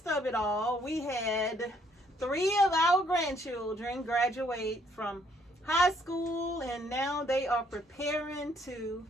of it all, we had 3 of our grandchildren graduate from high school, and now they are preparing to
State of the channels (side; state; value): both; normal; correlation 0.67